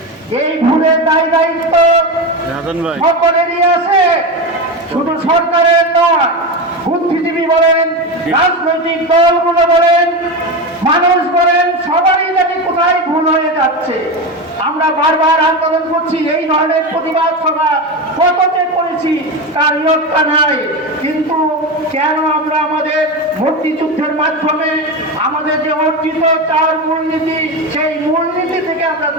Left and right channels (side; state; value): both; normal; correlation 0.18